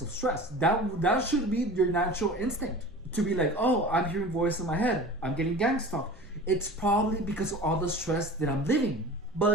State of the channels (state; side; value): normal; both; correlation 0.37